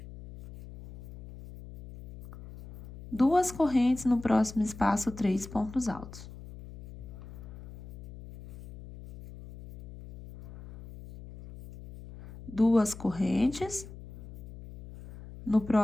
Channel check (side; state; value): left; noise; hum, 16 dB below the sound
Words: Duas correntes, no próximo espaço 3 pontos altos. Duas correntes, no